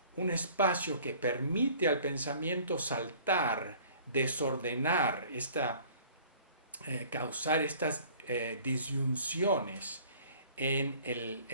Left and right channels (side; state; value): both; inverted; correlation -0.51